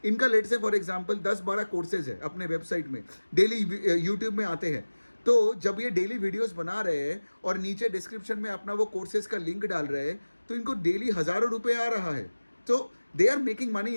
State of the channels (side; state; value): both; inverted; correlation -1.00